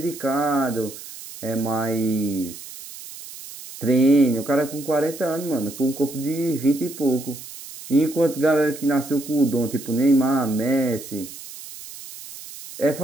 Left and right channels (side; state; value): right; noise; hiss, 14 dB below the sound